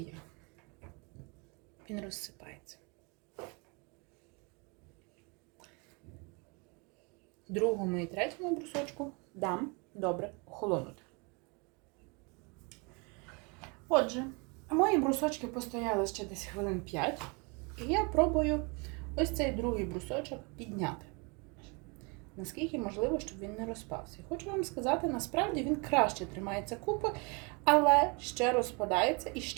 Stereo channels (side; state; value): left; quieter; 31.1 dB